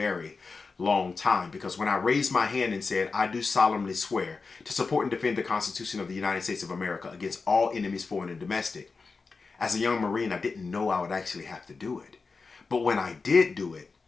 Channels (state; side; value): quieter; right; 4.4 dB